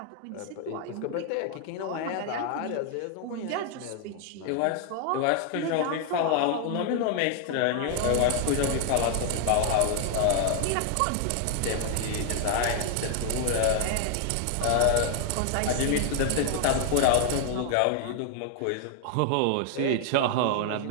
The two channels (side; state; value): both; different; correlation 0.00